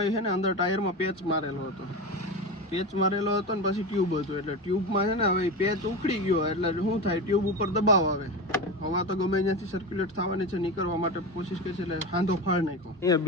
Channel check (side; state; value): both; normal; correlation 0.22